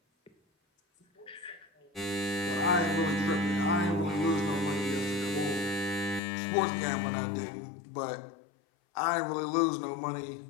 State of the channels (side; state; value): right; drops out; at 6.2 s